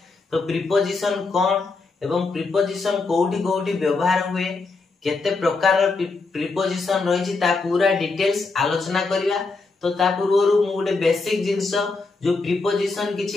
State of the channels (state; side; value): quieter; right; 3.9 dB